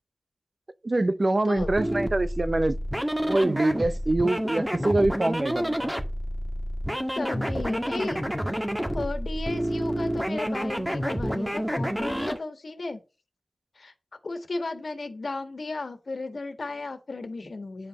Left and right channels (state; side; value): normal; both; correlation 0.98